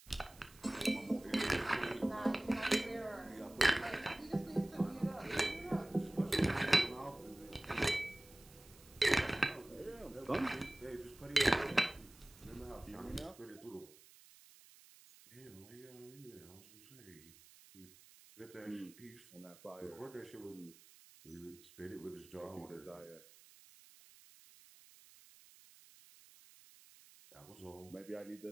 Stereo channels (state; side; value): noise; right; hiss, 22 dB below the sound